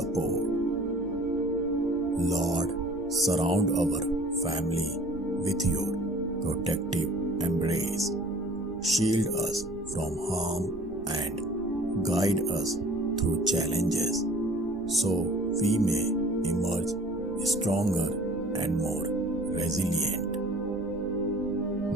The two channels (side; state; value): right; noise; rumble, 17 dB below the sound